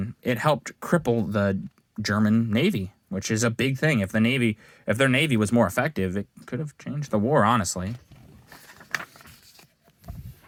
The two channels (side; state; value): both; identical; correlation 1.00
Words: it helped cripple the German Navy, which is a big thing. If their Navy was more effective, it could have changed the war, honestly.